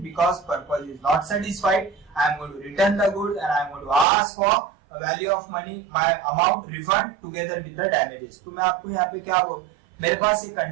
because purpose is not satisfied, I am going to return the goods and I am going to ask for value of money, my amount refund together with the damages. तो मैं आपको यहाँ पे क्या बोल, मेरे पास ये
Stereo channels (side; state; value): left; drops out; at 4.0 s